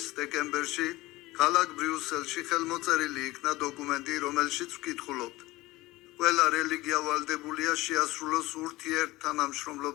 დეკემბერში ქალაქ ბრიუსელში ხელმოწერილი იქნა დოკუმენტი, რომელშიც ვკითხულობთ. ყველა რელიგია ვალდებულია შეასრულოს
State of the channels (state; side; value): quieter; right; 19.2 dB